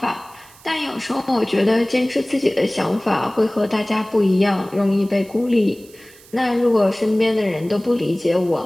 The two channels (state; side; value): noise; right; hiss, 24 dB below the sound